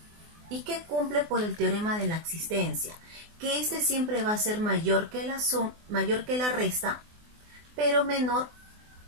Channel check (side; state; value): left; late; 24 ms